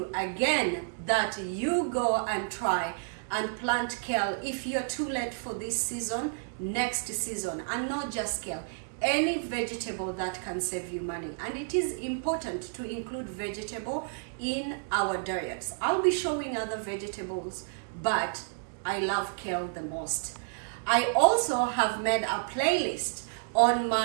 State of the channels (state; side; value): silent; left; digital silence